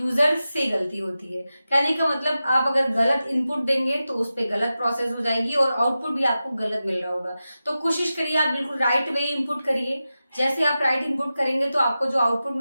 से गलती होती है। कहने का मतलब, आप अगर गलत इनपुट देंगे तो उस पर गलत प्रोसेस हो जाएगी और आउटपुट भी आपको गलत मिल रहा होगा। तो कोशिश करिए आप बिल्कुल राइट वे इनपुट करिए। जैसे आप राइट इनपुट करेंगे तो आपको जो आउटपुट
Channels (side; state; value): both; inverted; correlation -0.93